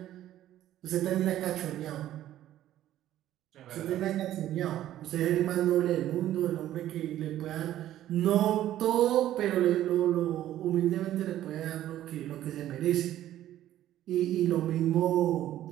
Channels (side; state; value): left; quieter; 12.9 dB